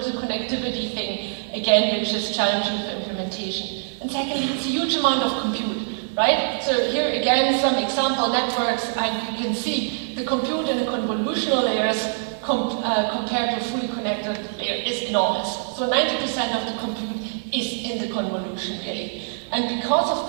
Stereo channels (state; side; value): silent; left; digital silence